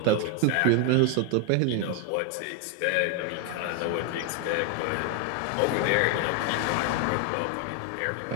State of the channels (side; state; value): both; different; correlation 0.00